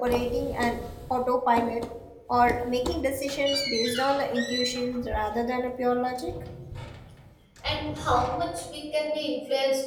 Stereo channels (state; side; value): identical; both; correlation 1.00